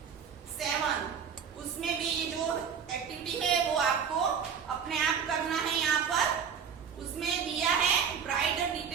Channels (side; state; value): left; quieter; 7.1 dB